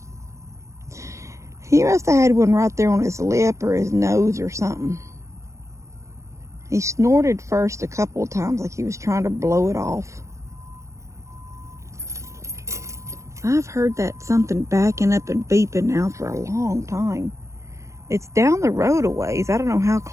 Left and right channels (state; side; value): late; left; 0.15 ms